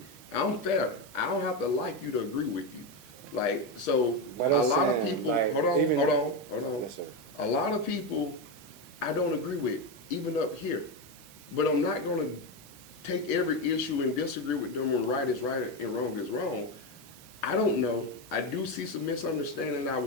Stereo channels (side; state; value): both; normal; correlation 0.12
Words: I'm fair. I don't have to like you to agree with you. Like, so But a I'm lot of saying, people, like, hold on. Yes, sir. A lot of people I don't agree with, even up here. But I'm not going to take every issue and disagree with them when right is right and wrong is wrong. I don't know. I do see some misunderstanding. I